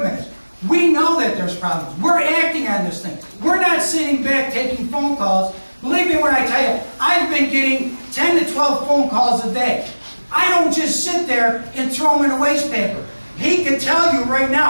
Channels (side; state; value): both; inverted; correlation -1.00